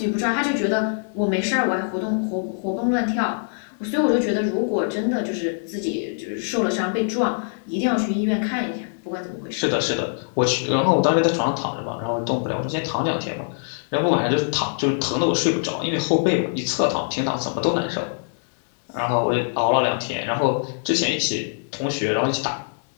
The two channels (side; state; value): right; silent; 63 dB below the other